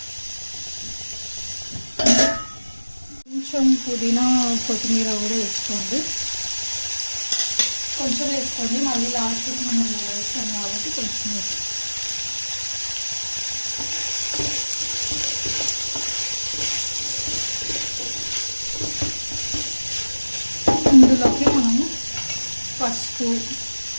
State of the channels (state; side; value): inverted; both; correlation -1.00